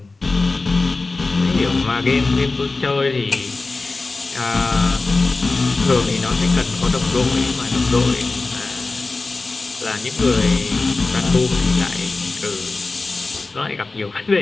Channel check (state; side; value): quieter; right; 3.5 dB